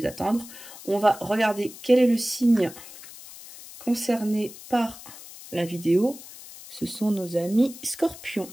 attendre, on va regarder quel est le signe concerné par la vidéo. Ce sont nos amis scorpions.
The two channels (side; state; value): left; noise; hiss, 16 dB below the sound